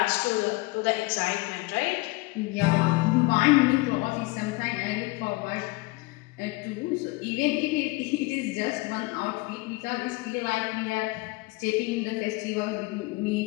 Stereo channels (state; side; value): quieter; right; 23.1 dB